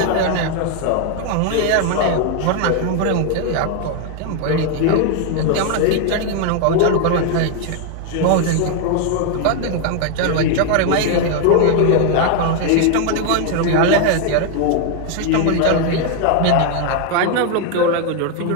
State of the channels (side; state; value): both; different; correlation 0.00